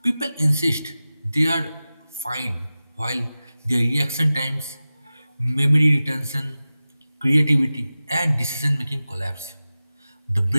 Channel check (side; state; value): both; inverted; correlation -0.95